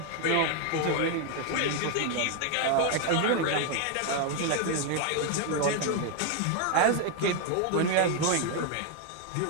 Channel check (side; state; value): both; different; correlation 0.01